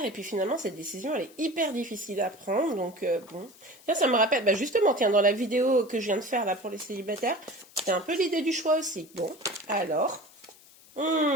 et puis finalement cette décision elle est hyper difficile à prendre. Donc bon, tiens, ça me rappelle, justement, tiens, dans la vidéo que je viens de faire là pour les célibataires, c'était un peu l'idée du choix aussi. Bon, alors,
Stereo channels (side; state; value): left; noise; hiss, 24 dB below the sound